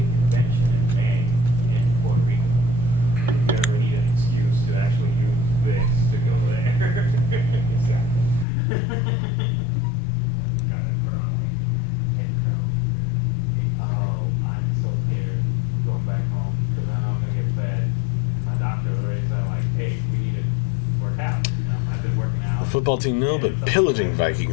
The football team, no, but pillaging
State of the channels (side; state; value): right; drops out; at 8.5 s